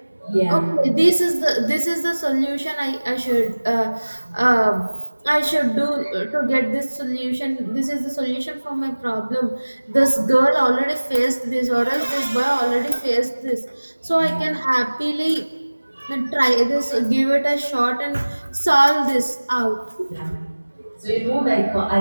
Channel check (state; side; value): inverted; both; correlation -1.00